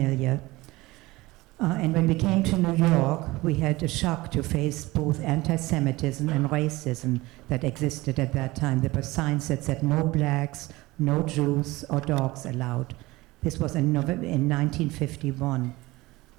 And when we came to New York, we had a shock to face both anti-Semitism and racism that existed at that time. There were signs that said no blacks, no Jews or dogs allowed. This was in 1951.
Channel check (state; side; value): quieter; left; 20.3 dB